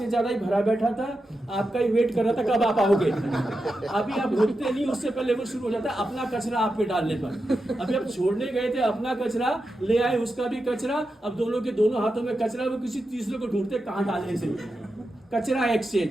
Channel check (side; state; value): both; normal; correlation 0.89